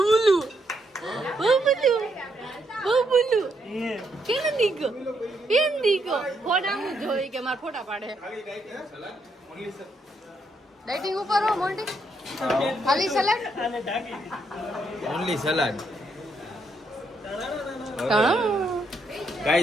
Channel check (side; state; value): both; normal; correlation 0.76